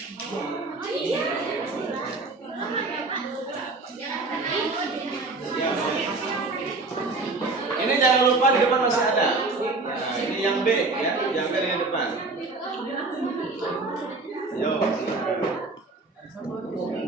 Ya, ini jangan lupa di depan masih ada. Nah, ini yang B ya, yang B di depan. Yo.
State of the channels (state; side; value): quieter; left; 3.5 dB